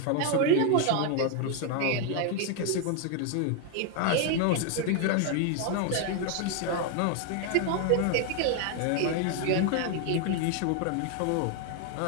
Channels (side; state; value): both; different; correlation 0.01